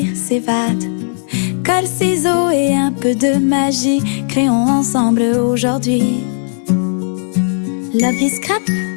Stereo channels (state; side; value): silent; right; 69 dB below the other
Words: s'évade. Colle, ciseaux et un peu de magie, créons ensemble aujourd'hui l'appli scrap.